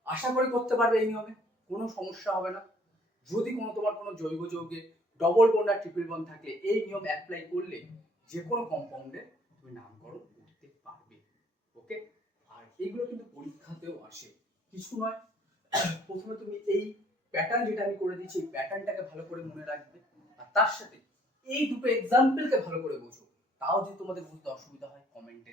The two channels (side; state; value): both; normal; correlation 0.60